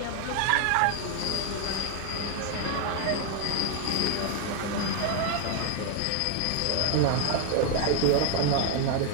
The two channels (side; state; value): both; different; correlation 0.01